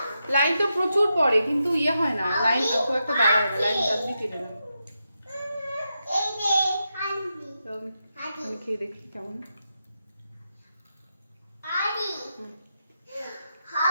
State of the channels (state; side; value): inverted; both; correlation -0.86